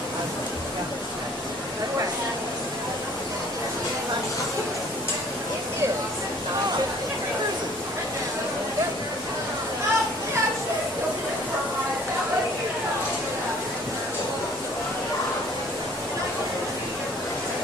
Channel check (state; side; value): normal; both; correlation 0.54